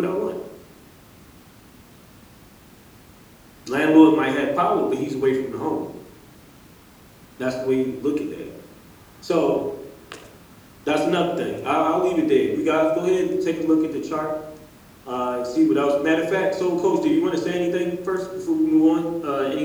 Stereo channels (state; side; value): identical; both; correlation 1.00